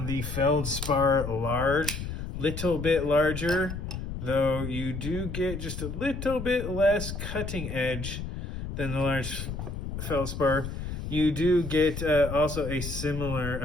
the Feldspar Large. Little bit larger, though you do get just a little bit less cutting edge than the large Feldspar. You do get also a similar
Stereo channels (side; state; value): left; noise; rumble, 6 dB below the sound